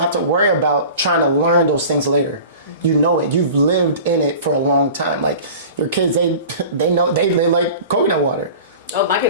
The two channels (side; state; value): both; inverted; correlation -0.39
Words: have to worry about trying to learn those things later. You know it. You've lived in it for a long time. Like your kids, they know they like coconut water. Oh, my